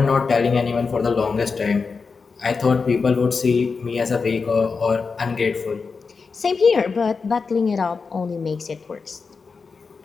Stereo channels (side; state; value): right; quieter; 4.9 dB